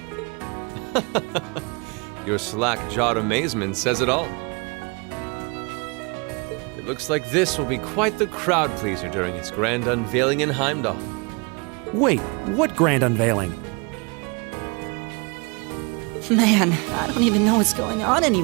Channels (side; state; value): left; quieter; 30.7 dB